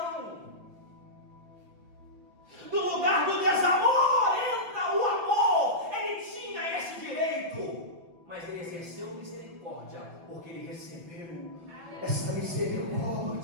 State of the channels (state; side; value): late; left; 5.9 ms